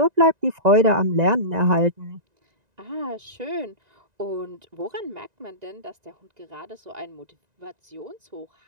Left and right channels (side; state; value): left; late; 1.9 ms